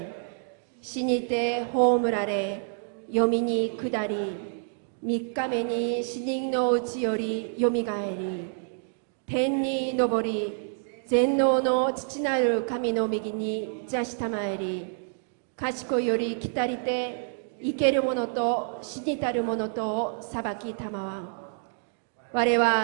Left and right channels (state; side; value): silent; left; digital silence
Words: 死にて葬られ、読みに下り、3日目に死人のうちよりよみがえり、天に昇り、全能の父なる神の右に座したまえり、賢いより来たりて、生ける者と死にたる者とを裁きたまわん。我